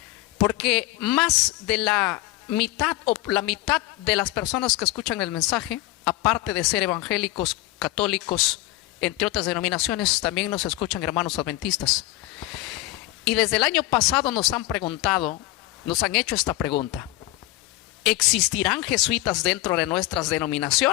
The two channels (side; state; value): right; quieter; 17.5 dB